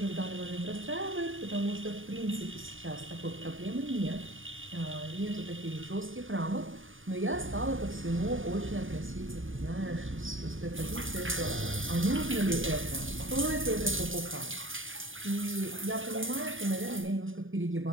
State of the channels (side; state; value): left; late; 0.58 ms